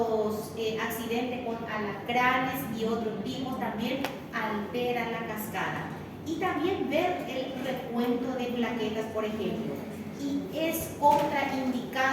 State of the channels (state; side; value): identical; both; correlation 1.00